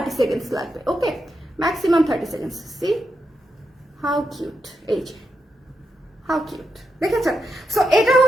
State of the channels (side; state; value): both; normal; correlation 0.85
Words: সেকেন্ডস লাগবে। Okay, maximum 30 seconds. See how cute, এই যে হাউ কিউট, দেখেছেন? সো এটা